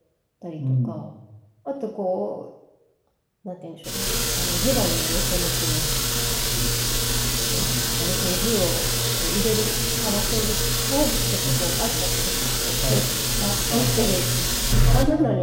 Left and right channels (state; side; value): identical; both; correlation 1.00